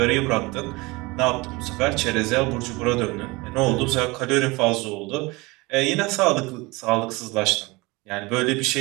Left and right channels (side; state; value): left; quieter; 23.8 dB